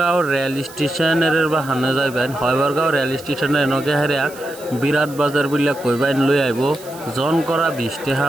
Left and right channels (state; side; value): noise; right; hiss, 19 dB below the sound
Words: রেল স্টেশনের বাহানে যাইবেন। হয়বরগাঁও রেল স্টেশনের নগে হেরিয়া বিরাট বাজার বলে কইবেন লই আইব। জন করা 20 টাকা